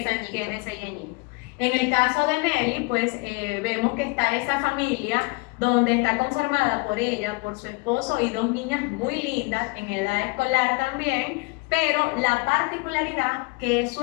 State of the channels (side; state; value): right; quieter; 26.1 dB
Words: 6 añitos. En el caso de Nelly, pues vemos que está esa familia donde está conformada por ella, por su esposo y dos niñas muy lindas en edad escolar también, pero la particularidad que su